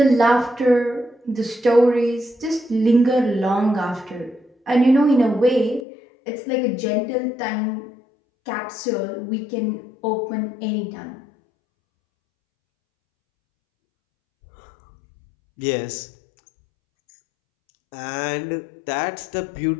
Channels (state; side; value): drops out; right; at 5.9 s